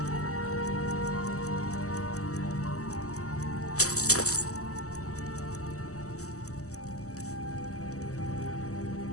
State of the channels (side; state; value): right; late; 0.66 ms